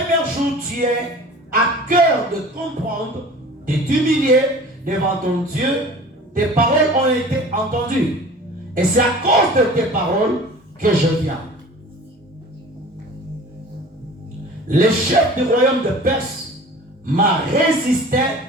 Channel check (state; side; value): normal; both; correlation 0.42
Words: jour, tu es à cœur de comprendre, de t'humilier devant ton Dieu. Tes paroles ont été entendues. Et c'est à cause de tes paroles que je viens. Le chef du royaume de Perse m'a résisté